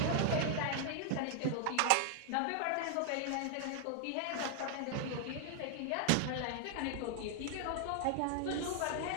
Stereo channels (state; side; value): different; both; correlation 0.00